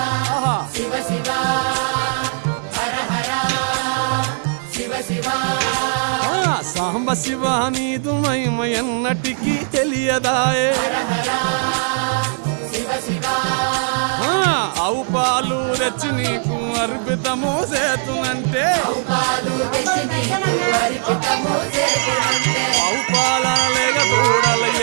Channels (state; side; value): silent; left; 59 dB below the other